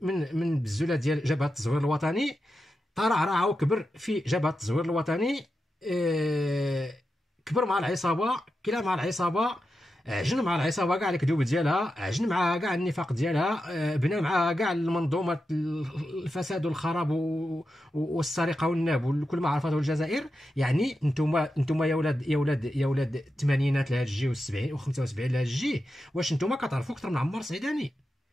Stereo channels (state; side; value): normal; both; correlation 0.89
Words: بزولة ديال جبهة التزوير الوطني، ترعرع وكبر في جبهة التزوير الوطني، كبر مع العصابة، كلا مع العصابة، عجن مع العصابة كاع الكذوب ديالها، عجن معها كاع النفاق ديالها، بنى معها كاع المنظومة الفساد والخراب والسرقة والناب وكل ما عرفته الجزائر. يعني انتم يا ولاد الثمانينات لهاد الجي و70 و75 لهاد الجي، واش انتم كتعرفوا اكثر من عمار السعيداني؟